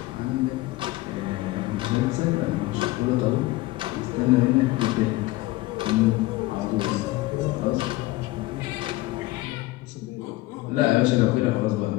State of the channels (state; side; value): quieter; right; 18.9 dB